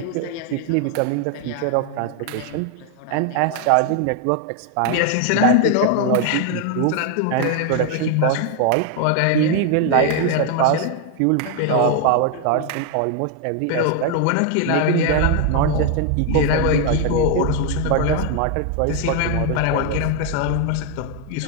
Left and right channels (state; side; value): different; both; correlation 0.01